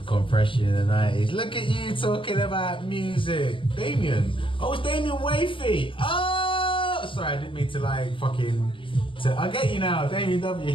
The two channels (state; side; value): late; right; 0.25 ms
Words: Compression in the 90s. Look at you talking about music. Damien. Oh, it's Damien Wafy. Oh! Sorry, I didn't mean to like fucking... I get you now. Damien W.